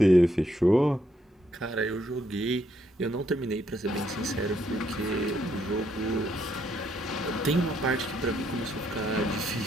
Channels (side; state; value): both; normal; correlation 0.74